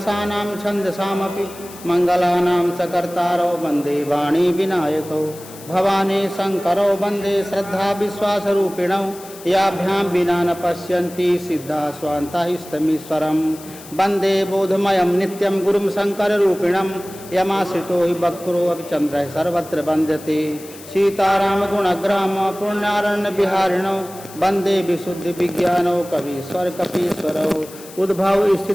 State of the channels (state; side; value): noise; left; hiss, 18 dB below the sound